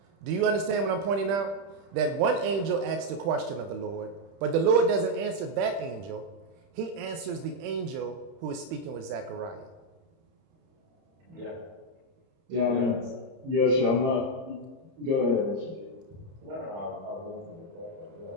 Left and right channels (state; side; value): late; left; 30 ms